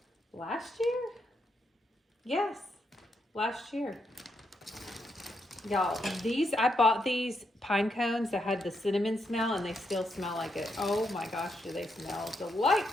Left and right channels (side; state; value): both; normal; correlation 0.80